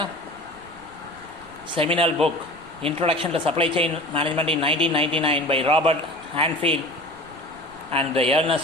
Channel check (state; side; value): noise; right; rumble, 24 dB below the sound